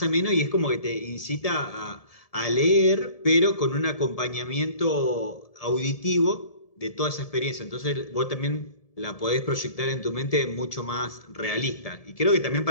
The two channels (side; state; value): right; late; 1.7 ms